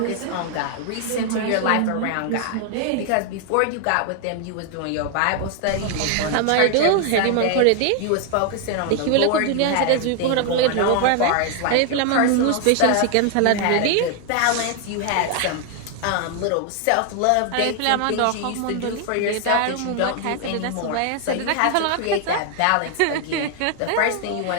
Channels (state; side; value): different; both; correlation 0.00